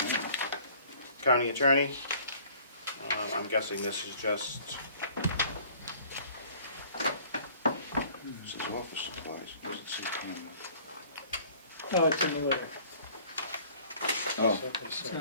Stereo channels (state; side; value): inverted; both; correlation -0.53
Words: county attorney. I'm guessing this is just, This is office supplies. It doesn't say camera. Oh, it's in the letter. Oh. It's